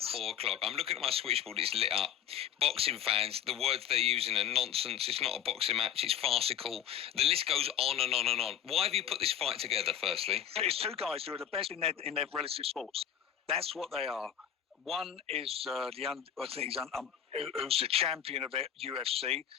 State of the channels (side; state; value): right; quieter; 9.8 dB